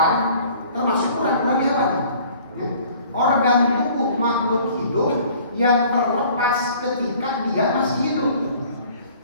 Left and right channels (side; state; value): both; inverted; correlation -0.52